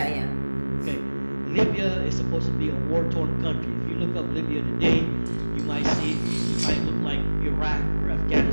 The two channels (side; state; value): both; inverted; correlation -1.00